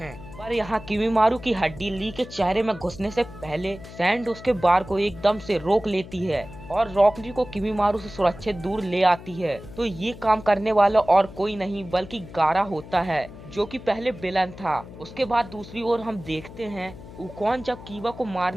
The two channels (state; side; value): noise; left; hum, 16 dB below the sound